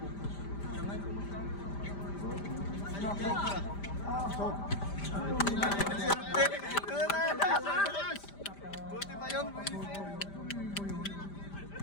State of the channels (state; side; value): late; right; 5.0 ms